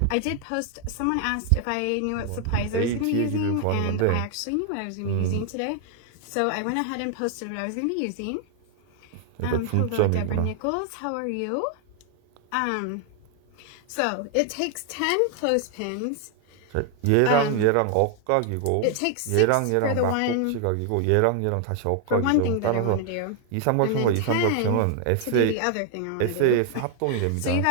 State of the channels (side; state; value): both; different; correlation 0.00